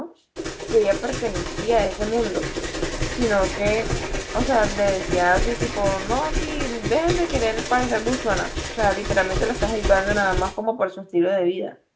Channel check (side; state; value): both; identical; correlation 1.00